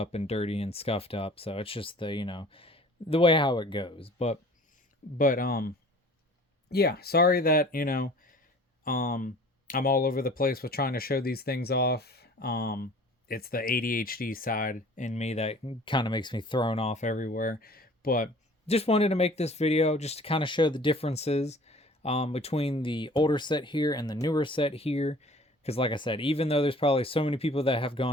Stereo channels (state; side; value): normal; both; correlation 0.48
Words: and dirty and scuffed up. So it's just the way how it goes. But yeah, sorry that, I'm all over the place with trying to show these things off. It's the ADHD side in me that kind of makes me thrown off everywhere. But just wanted to make this video just to kind of show the differences between the older set here and the newer set here. Because like I said, even though there's probably so many people that have